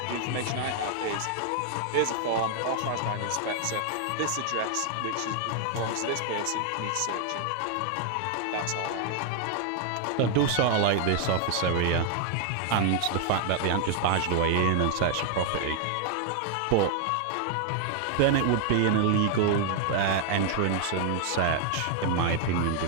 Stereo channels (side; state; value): both; different; correlation 0.00